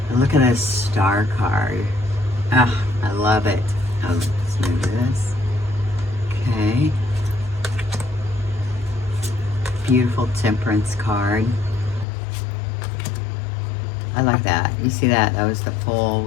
And look at this Star card. Oh, I love it. Oh, let's move this. Okay. Beautiful Temperance card. I like that. You see that? That was the Fool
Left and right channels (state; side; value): drops out; right; at 12.1 s